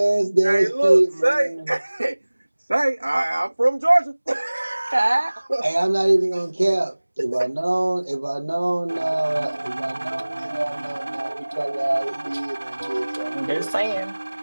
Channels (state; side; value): inverted; both; correlation -1.00